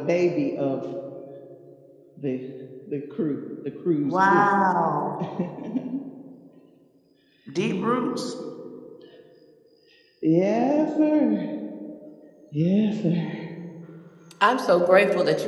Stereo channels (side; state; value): both; identical; correlation 1.00